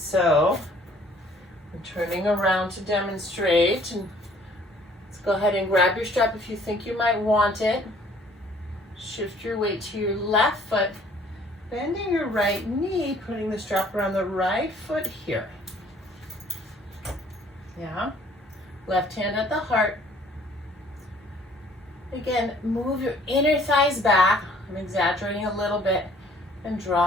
I'm turning around to demonstrate. And let's go ahead and grab your strap if you think you might want it. Shift your weight to your left foot. Bend bending your right knee, putting the strap around the right foot here. Yeah. Left hand at the heart. Again, move your inner thighs back. I'm exaggerating a little bit. And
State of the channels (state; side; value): normal; both; correlation 0.58